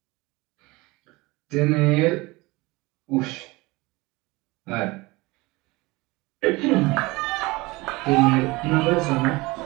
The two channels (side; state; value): left; quieter; 22.7 dB